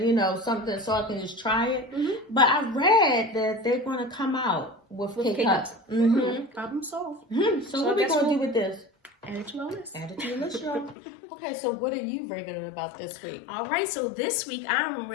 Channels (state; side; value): drops out; right; at 11.0 s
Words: something so I can just try it. But I read that they're going to come out with K-Cups. Problem solved. So what are we going to do with this? Add it to our list. Add it to your list, y'all. Okay, so what are you raving about this week? All right, so this week I'm